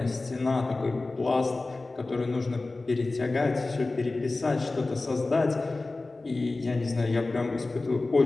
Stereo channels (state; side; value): quieter; right; 3.3 dB